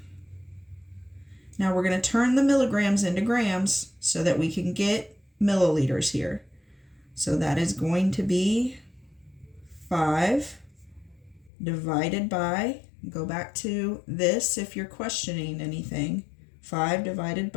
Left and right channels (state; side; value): drops out; right; at 11.5 s